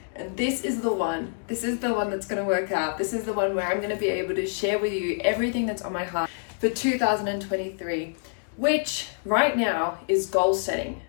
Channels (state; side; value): silent; right; digital silence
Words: and this is the one that's going to work out. This is the one where I'm going to be able to share with you everything that's on my heart for 2023, which right now is goal setting.